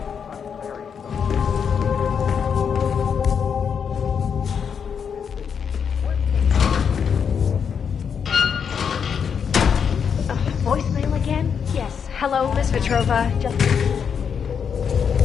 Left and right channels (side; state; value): right; quieter; 7.0 dB